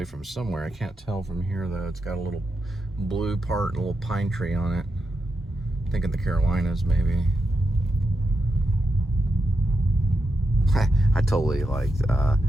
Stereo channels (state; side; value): normal; both; correlation 0.86